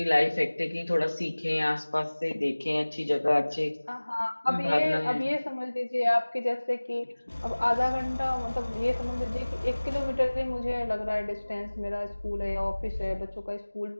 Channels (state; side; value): inverted; both; correlation -1.00